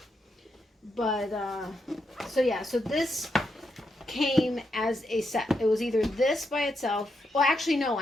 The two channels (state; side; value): normal; both; correlation 0.82